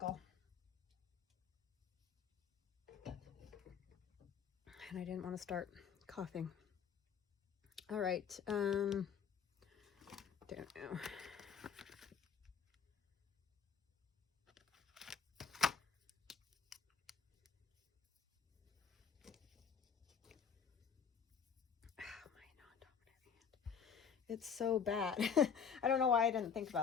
And I didn't want to start coughing. All right, don't know. It's so bad. I don't know why I didn't think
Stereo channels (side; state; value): right; quieter; 6.9 dB